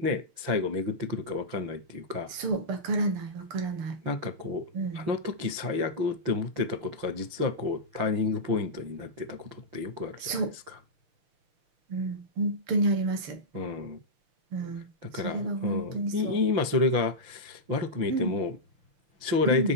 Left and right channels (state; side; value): late; left; 5.9 ms